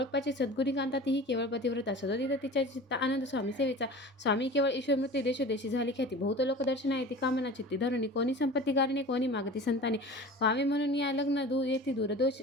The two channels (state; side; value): normal; both; correlation 0.38